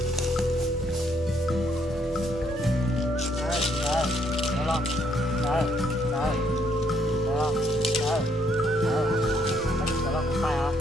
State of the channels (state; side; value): normal; both; correlation 0.71